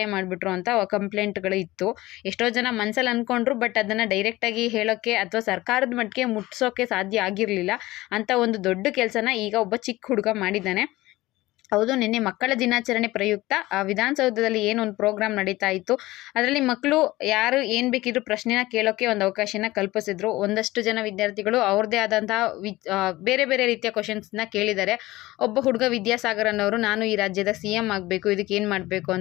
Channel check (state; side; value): quieter; right; 18.5 dB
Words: ಮಾಡಿಬಿಟ್ರು ಅಂತ ಕಂಪ್ಲೇಂಟ್ಗಳು ಇತ್ತು. ಎಷ್ಟೋ ಜನ ಮನಸ್ಸಲ್ಲಿ ಅಂದ್ಕೊಂಡ್ರು, ಬಟ್ ಅದನ್ನು ಡೈರೆಕ್ಟಾಗಿ ಹೇಳೋಕ್ಕೆ ಅಥವಾ ಸರ್ಕಾರದ ಮಟ್ಟಿಗೆ ಮುಟ್ಸೋಕ್ಕೆ ಸಾಧ್ಯ ಆಗಿರಲಿಲ್ಲ. ಅಂತ ಒಂದು ದೊಡ್ಡ ಕೆಲಸನ ಈಗ ಒಬ್ಬ ಚಿಕ್ಕ ಹುಡುಗ ಮಾಡಿದ್ದಾನೆ. ಹೌದು, ನಿನ್ನೆ ಮಕ್ಕಳ ದಿನಾಚರಣೆ ಪ್ರಯುಕ್ತ ವಿಧಾನಸೌಧದಲ್ಲಿ ಏನೊಂದು ಪ್ರೋಗ್ರಾಮ್ ನಡೀತಾ ಇತ್ತು. ಅದರಲ್ಲಿ ಮಕ್ಕಳು ಯಾರು ಏನು ಬೇಕಿದ್ರು ಪ್ರಶ್ನೆನ ಕೇಳೋಕ್ಕೆ ಒಂದು ಅವಕಾಶನ ಕಲ್ಪಿಸಿದ್ರು. ಒಂದಷ್ಟು ಜನ ವಿದ್ಯಾರ್ಥಿಗಳು ಅವ್ರದ್ದೇ ಆದಂತಹ ಬೇರೆ ಬೇರೆ ರೀತಿಯ ಕ್ವಶನ್ಸ್ನ ಕೇಳಿದ್ದಾರೆ. ಒಬ್ಬ ಹುಡುಗ ವಿದ್ಯಾಸಾಗರ್ ಅನ್ನೋರು, ನಾನು ಈ ರಾಜ್ಯದ CM ಆಗಬೇಕು, ಇದಕ್ಕೆ ಏನು ಮಾಡಬೇಕು